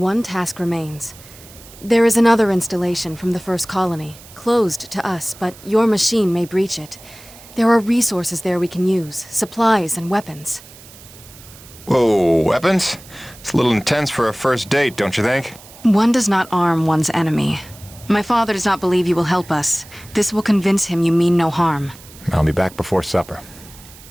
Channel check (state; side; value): noise; right; hiss, 20 dB below the sound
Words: task remains. There is another installation from the first colony, closed to us, but your machine may breach it. There are resources there we can use, supplies and weapons. Whoa, weapons? It's a little intense for a first date, don't you think? One does not arm one's enemy. My father does not believe you will help us. This will convince him you mean no harm. I'll be back before supper.